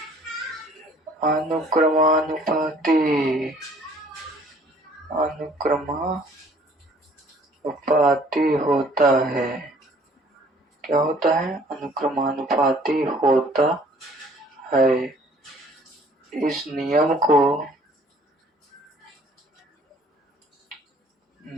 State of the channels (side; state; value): both; normal; correlation 0.56